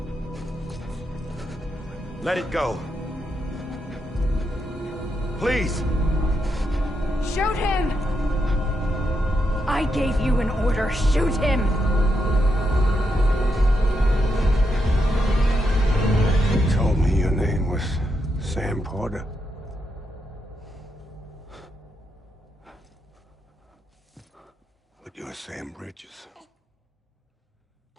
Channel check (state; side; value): normal; both; correlation 0.82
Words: Let it go. Please. Shoot him! I gave you an order. Shoot him! You told me your name was Sam Porter. But you're Sam Bridges.